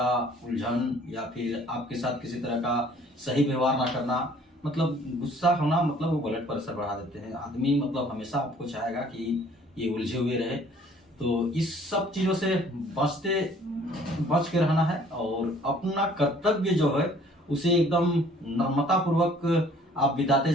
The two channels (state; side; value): normal; both; correlation 0.56